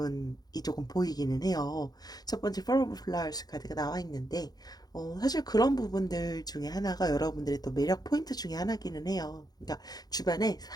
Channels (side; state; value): right; late; 0.19 ms